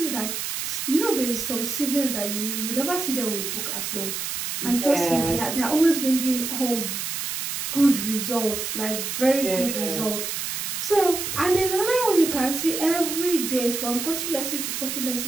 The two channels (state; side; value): noise; right; hiss, 3 dB below the sound